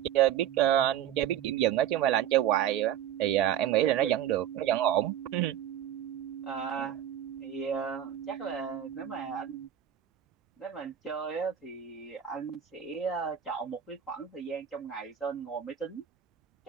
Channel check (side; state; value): left; quieter; 10.5 dB